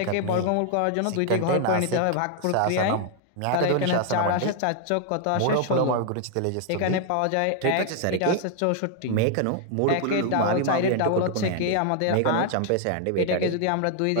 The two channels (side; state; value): both; different; correlation 0.00